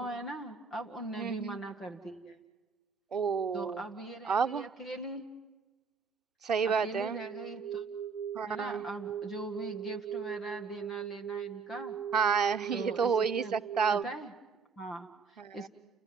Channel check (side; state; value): left; quieter; 5.4 dB